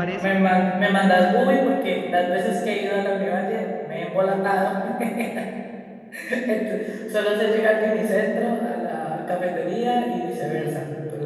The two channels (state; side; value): identical; both; correlation 1.00